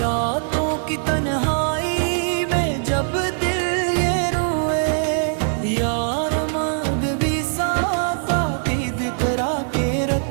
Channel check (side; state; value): left; silent; digital silence